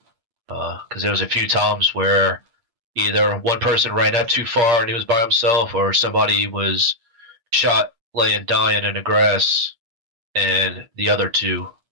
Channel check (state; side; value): late; left; 8.6 ms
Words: Because there was a few times where either one person ran up too far and he was by himself, or somebody was shot laying dying in the grass, and the other two